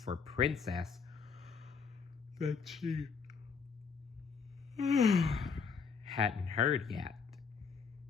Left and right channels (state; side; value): quieter; right; 5.7 dB